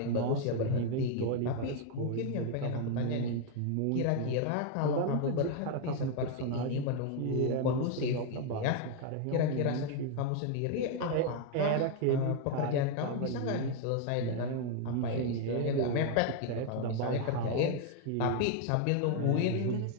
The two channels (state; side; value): different; both; correlation 0.01